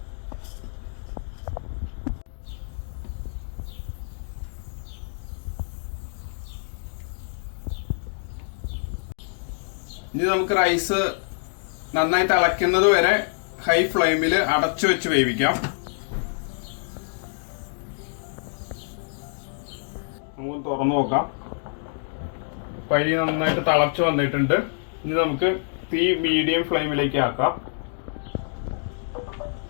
ഇനി നമുക്ക് റൈസ് നന്നായി തിളയ്ക്കുന്നത് വരെ ഹൈ ഫ്ലെയിമിൽ അടച്ചു വെച്ച് വേവിക്കാം. നമുക്ക് തുറന്നു നോക്കാം. പരി നന്നായിട്ട് തിളച്ചു വന്നിട്ടുണ്ട്. ഇനി നമുക്ക് തീ മീഡിയം ഫ്ലെയിമിലേക്ക് ആക്കാം.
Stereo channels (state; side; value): silent; right; digital silence